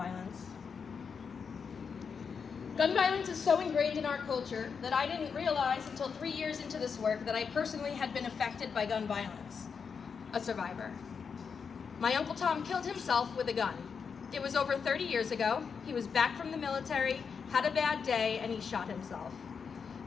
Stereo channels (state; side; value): quieter; right; 6.0 dB